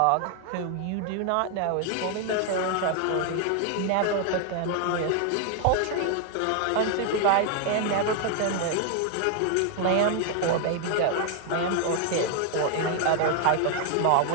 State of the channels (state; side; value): different; both; correlation 0.00